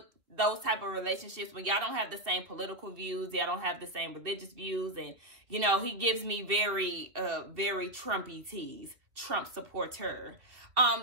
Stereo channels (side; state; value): left; late; 2.4 ms